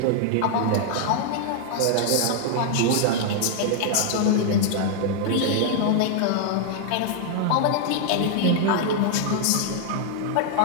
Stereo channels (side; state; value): both; different; correlation -0.01